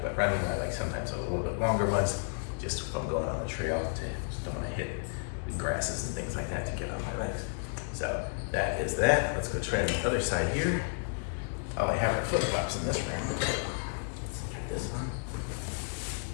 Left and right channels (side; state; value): right; silent; digital silence